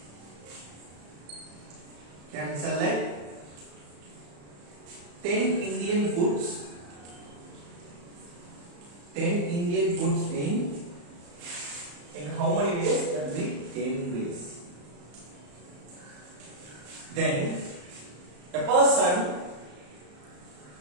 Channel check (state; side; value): late; left; 34 ms